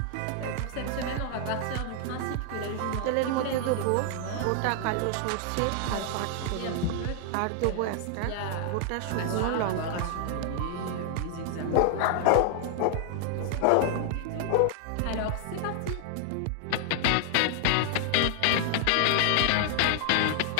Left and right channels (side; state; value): both; different; correlation 0.00